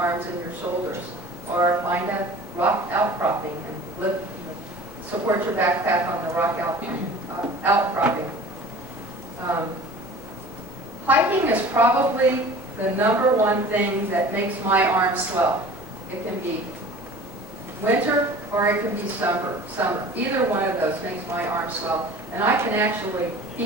and your shoulders. Or find a rock outcropping and support your backpack on the rock outcropping. Hiking is probably the number one thing that makes my arms swell. It can be winter or it can be summer. Either one of those makes my arms swell. And I can actually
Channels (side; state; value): both; normal; correlation 0.42